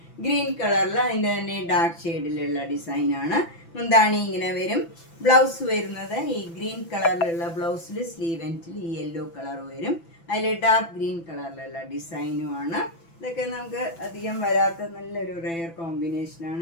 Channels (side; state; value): right; late; 6.0 ms